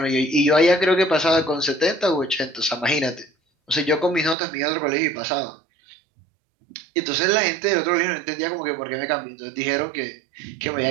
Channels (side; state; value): left; drops out; at 4.4 s